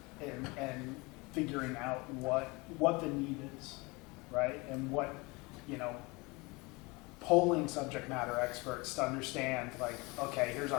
And figuring out what the need is, right? And what, polling subject matter experts to understand, like, okay, here's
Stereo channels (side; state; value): right; quieter; 25.8 dB